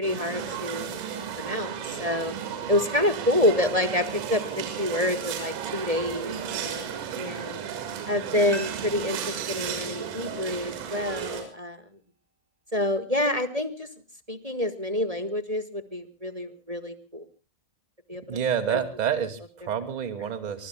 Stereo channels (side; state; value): left; late; 1.7 ms